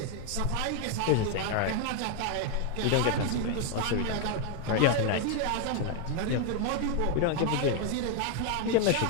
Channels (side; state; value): both; different; correlation 0.01